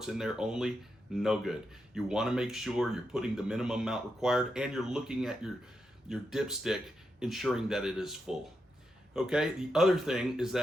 in there only. No good. You want to make sure you're putting the minimum amount required, and you're looking at your dipstick, ensuring that it is full. Okay, the other thing is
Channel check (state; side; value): normal; both; correlation 0.85